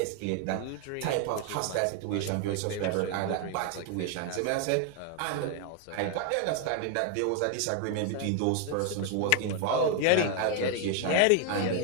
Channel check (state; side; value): different; both; correlation 0.01